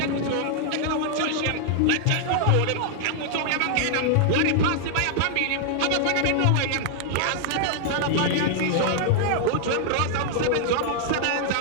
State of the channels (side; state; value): both; different; correlation 0.00